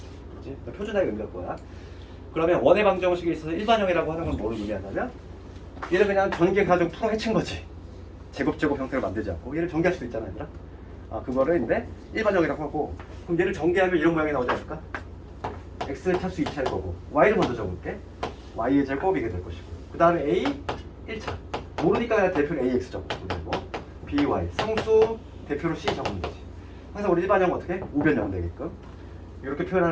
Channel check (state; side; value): identical; both; correlation 1.00